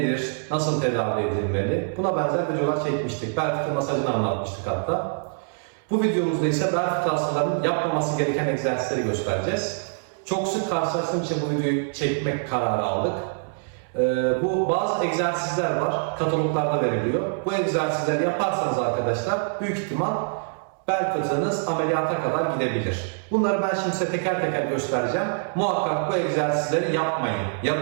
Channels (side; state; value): left; silent; 62 dB below the other